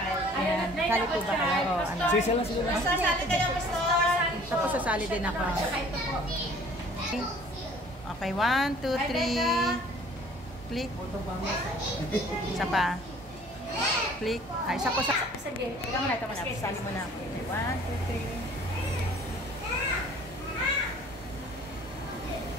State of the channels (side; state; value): both; normal; correlation 0.52